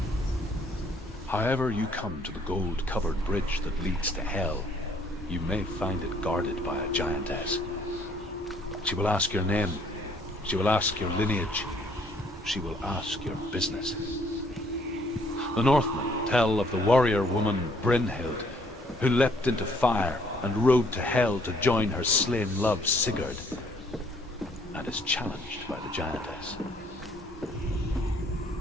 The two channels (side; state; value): both; normal; correlation 0.63